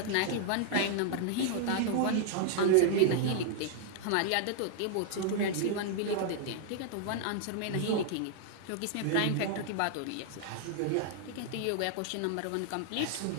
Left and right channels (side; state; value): both; different; correlation -0.01